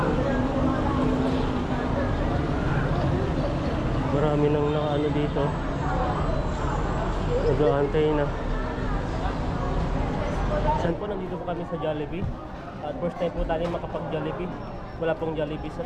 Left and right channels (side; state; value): both; identical; correlation 1.00